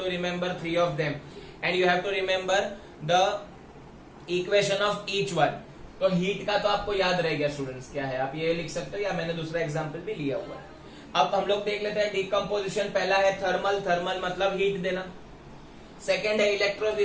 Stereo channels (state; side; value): identical; both; correlation 1.00